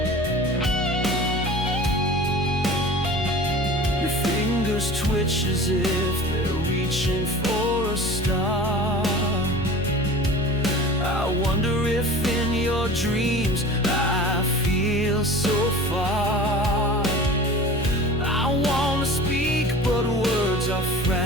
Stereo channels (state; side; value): normal; both; correlation 0.39